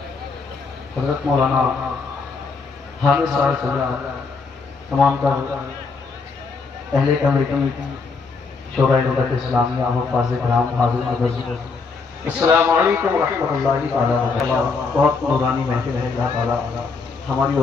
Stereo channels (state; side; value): quieter; right; 4.6 dB